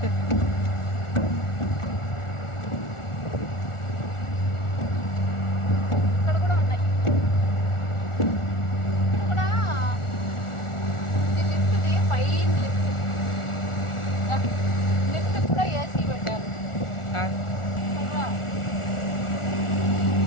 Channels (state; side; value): late; right; 1.4 ms